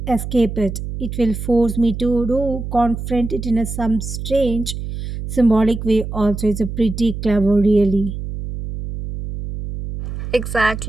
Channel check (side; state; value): right; noise; hum, 7 dB below the sound